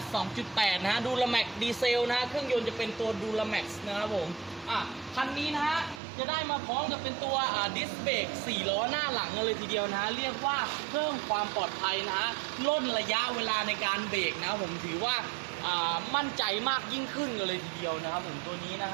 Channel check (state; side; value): drops out; left; at 6.0 s